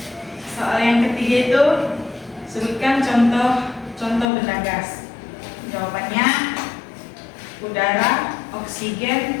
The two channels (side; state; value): right; drops out; at 4.2 s